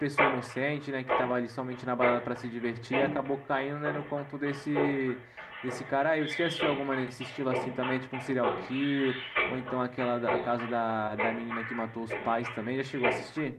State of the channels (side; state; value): both; identical; correlation 1.00